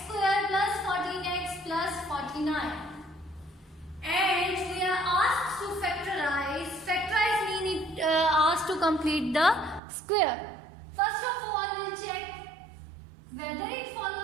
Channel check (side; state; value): left; drops out; at 9.8 s